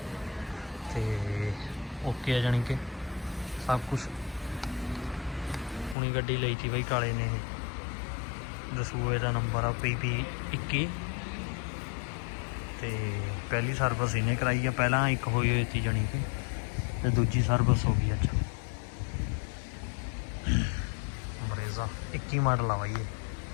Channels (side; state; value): right; drops out; at 6.0 s